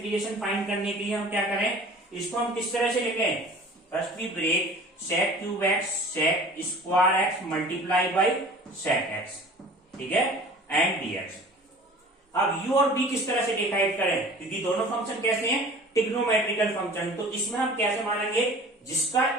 फाइंड करने के लिए हम क्या करें, इसको हम किस तरह से लिखें, first we break sec cube x sec square x multiply by sec x, ठीक है, एंड dx। अब u और b किस तरह से डिसाइड करें, क्योंकि दोनों फंक्शन कैसे हैं, ट्रिग्नोमेट्रिकल फंक्शन। तो इसमें हम कैसे मानेंगे, जिसका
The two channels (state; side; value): normal; both; correlation 0.44